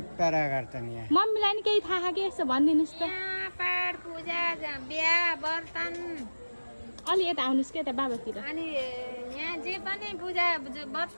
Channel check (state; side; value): inverted; both; correlation -1.00